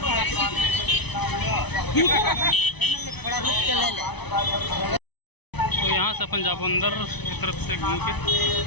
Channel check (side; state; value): right; late; 0.99 ms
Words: तो यहाँ से अपन जाओ अंदर की तरफ से घूम के।